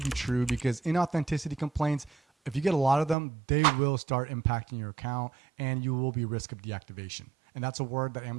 true, because inauthenticity complaints, if you get a lot of them, they will start impacting your account and you will be at risk of deactivation. And that's a word that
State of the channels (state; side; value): drops out; left; at 3.2 s